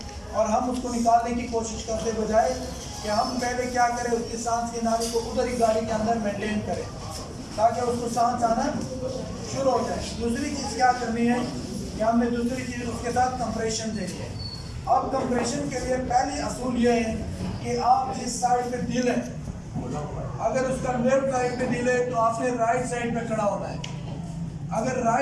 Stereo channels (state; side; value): identical; both; correlation 1.00